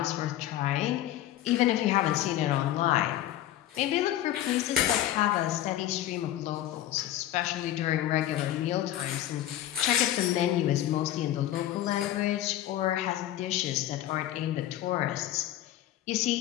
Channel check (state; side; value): quieter; right; 13.1 dB